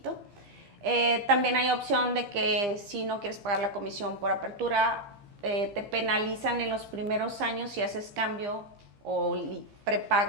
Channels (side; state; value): left; late; 15 ms